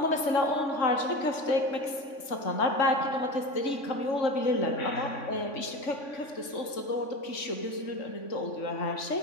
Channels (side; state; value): right; late; 3.5 ms